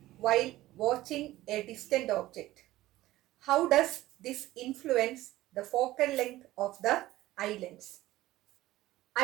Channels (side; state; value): left; quieter; 16.3 dB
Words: while watching a distant object? How does this influence the focal length of the eye lens?